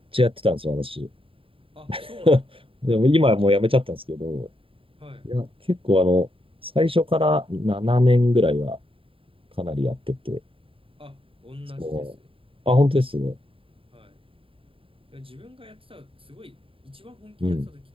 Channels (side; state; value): left; late; 0.26 ms